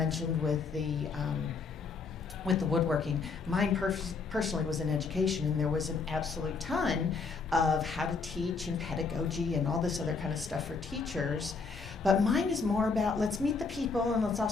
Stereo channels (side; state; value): right; quieter; 4.7 dB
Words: with the woodworking, mine personally was in education, and there was an absolute ton of how to teach and pedagogy and all this other kind of stuff for teachers. But mine is more about let's meet the people and